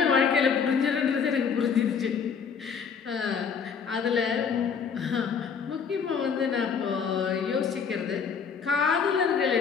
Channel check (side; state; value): right; quieter; 6.4 dB